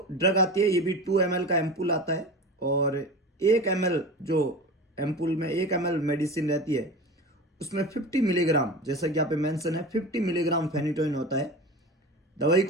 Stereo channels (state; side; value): normal; both; correlation 0.31